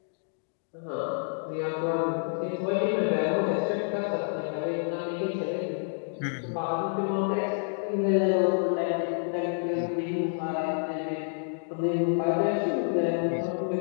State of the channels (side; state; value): right; silent; digital silence